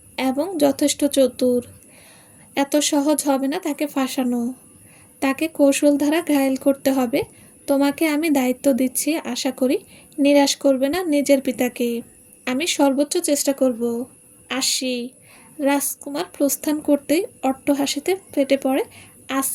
এবং যথেষ্ট চতুর। এত সহজ হবে না তাকে ফাঁসানো। তাকে কৌশল দ্বারা ঘায়েল করতে হবে। তোমাকে আমি দায়িত্ব দিচ্ছি, আশা করি নিরাশ করবে না নিজের পিতাকে। আমি সর্বোচ্চ চেষ্টা করব। আসি। রাজকুমার প্রস্থান করতেই অট্টহাসিতে ফেটে পড়ে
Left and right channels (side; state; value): both; identical; correlation 1.00